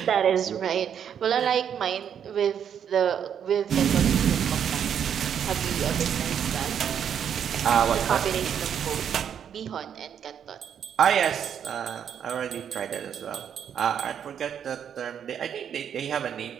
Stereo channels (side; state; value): left; quieter; 8.5 dB